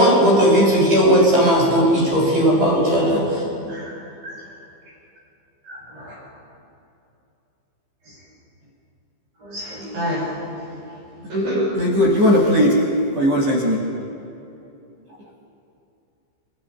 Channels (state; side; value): late; left; 15 ms